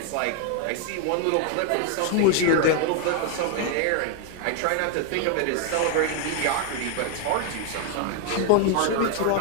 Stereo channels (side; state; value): both; different; correlation 0.01